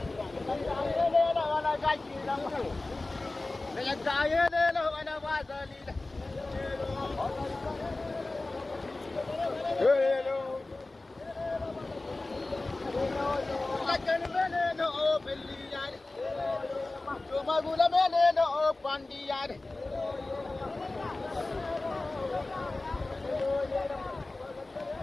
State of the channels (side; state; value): right; quieter; 3.1 dB